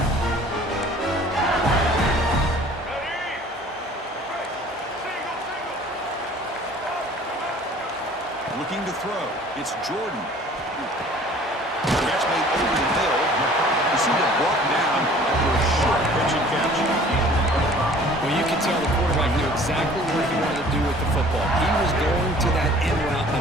Looking to throw. It's Jordan. Catch made over the middle. You see it brought down after a short pitch and catch. Well, you can tell the quarterback knew exactly what he wanted to do with the football. He was going to that end route no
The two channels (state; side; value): normal; both; correlation 0.50